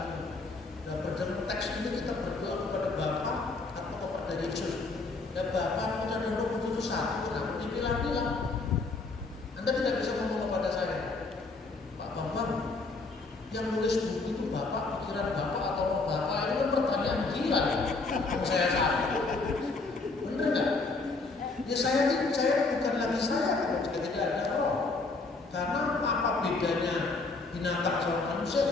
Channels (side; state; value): right; quieter; 3.7 dB